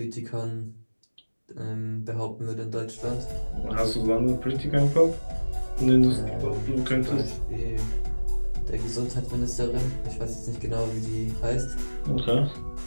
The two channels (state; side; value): inverted; both; correlation -1.00